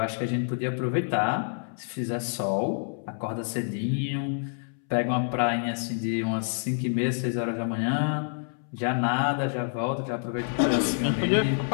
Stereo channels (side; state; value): right; silent; 60 dB below the other